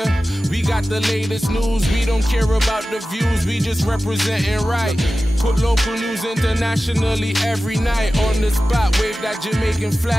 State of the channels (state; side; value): normal; both; correlation 0.95